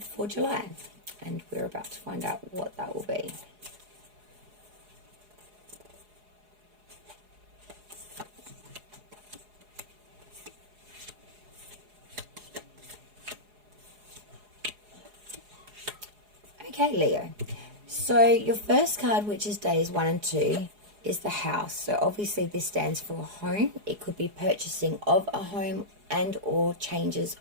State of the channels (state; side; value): late; left; 4.8 ms